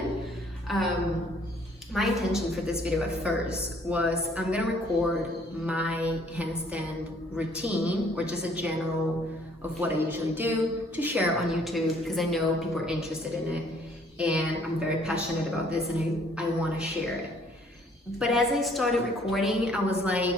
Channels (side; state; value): both; normal; correlation 0.61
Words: My intention for this video at first was I'm gonna record my handstand routine, or just a general of what I usually do, to share on YouTube, because I know people are interested in it, and I'm very passionate about this, and I want to share it. But as I started recording, I was